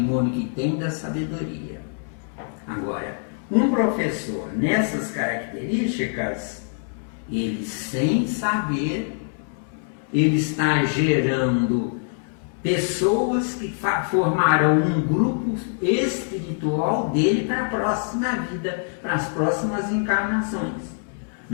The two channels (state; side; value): silent; right; 62 dB below the other